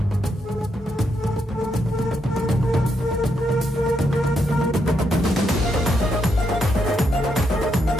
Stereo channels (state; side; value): normal; both; correlation 0.79